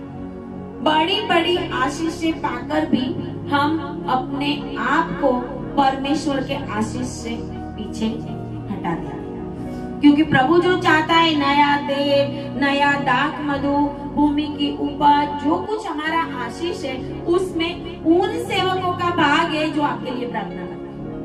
बड़ी बड़ी आशीष से पाकर भी हम अपने आप को परमेश्वर के आशीष से पीछे हटा दिया, क्योंकि प्रभु जो चाहता है नया तेल, नया दाख, मधु, भूमि की उपज, जो कुछ हमारा आशीष है, उसमें उन सेवकों का भाग है जो आपके लिए प्रार्थना करते हैं।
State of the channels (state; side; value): identical; both; correlation 1.00